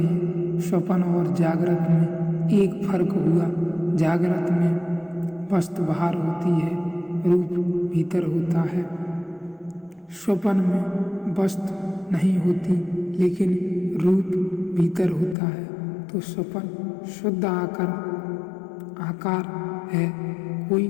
स्वप्न और जागृत में एक फर्क हुआ, जागृत में वस्तु बाहर होती है, रूप भीतर होता है। स्वप्न में वस्तु नहीं होती, लेकिन रूप भीतर होता है। तो स्वप्न शुद्ध आकार है, कोई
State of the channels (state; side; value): drops out; right; at 15.4 s